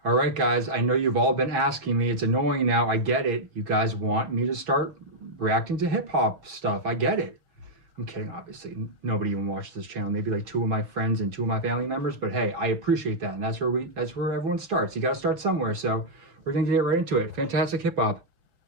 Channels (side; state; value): left; late; 5.2 ms